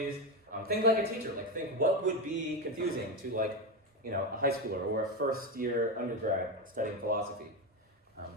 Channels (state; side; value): normal; both; correlation 0.14